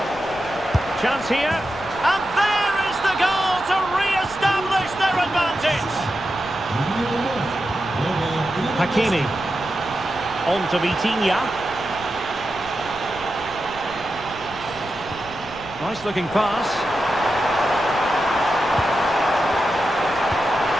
Chance here. And there is the goal to re-establish their advantage. Hakimi. On to Vitinha. Nice looking pass.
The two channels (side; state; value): left; noise; rumble, 18 dB below the sound